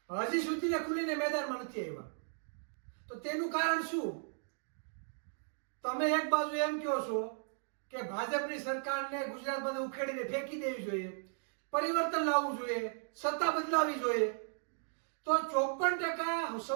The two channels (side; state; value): left; silent; digital silence